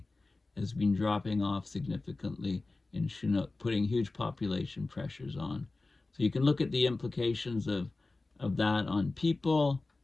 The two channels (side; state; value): right; quieter; 3.4 dB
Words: has been dropping off significantly in Chinook, putting huge population pressures on. So you can look at the implications of that on people,